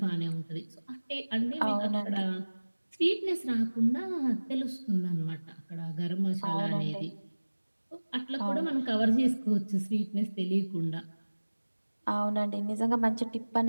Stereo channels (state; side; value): inverted; both; correlation -1.00